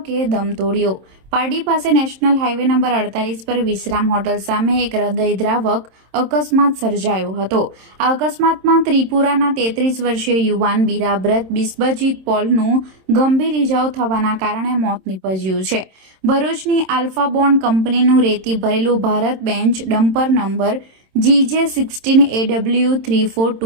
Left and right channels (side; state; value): left; late; 27 ms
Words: દમ તોડ્યો। પારડી પાસે નેશનલ હાઈવે નંબર 48 પર વિશ્રામ હોટલ સામે એક હૃદયદ્રાવક અકસ્માત સર્જાયો હતો। આ અકસ્માતમાં ત્રિપુરાના 33 વર્ષીય યુવાન બિરાબ્રત બિસ્બજીત પોલનું ગંભીર ઇજાઓ થવાના કારણે મોત નીપજ્યું છે। ભરૂચની આલ્ફા બોન્ડ કંપનીનું રેતી ભરેલું Bharat bench dumper number